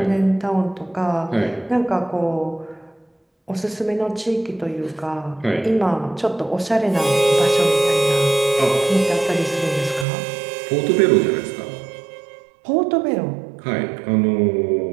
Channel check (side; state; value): left; drops out; at 10.1 s